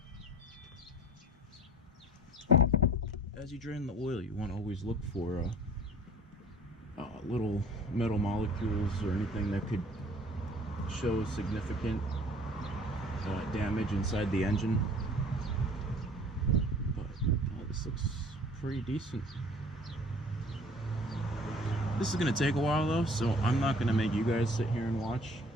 As you drain the oil, you want to always look for little metal molecules or anything that could show significant damage inside the engine. But this looks pretty decent. This is gonna take a while though, so I'm not gonna make you guys sit here and watch.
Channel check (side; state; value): both; normal; correlation 0.50